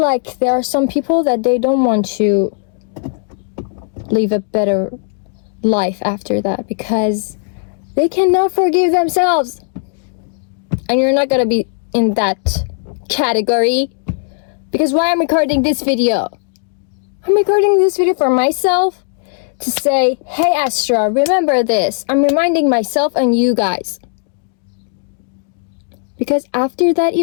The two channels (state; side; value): silent; right; digital silence